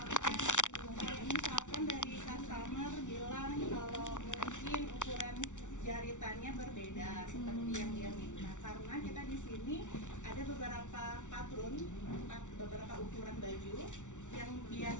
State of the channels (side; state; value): right; late; 0.86 ms